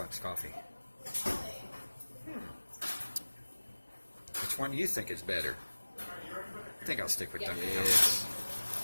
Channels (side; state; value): both; inverted; correlation -1.00